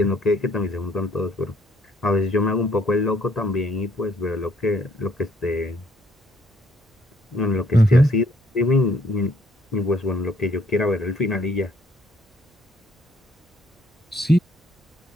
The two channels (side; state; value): both; normal; correlation 0.66